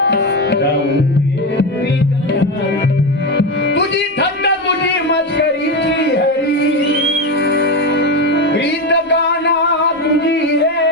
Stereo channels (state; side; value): normal; both; correlation 0.15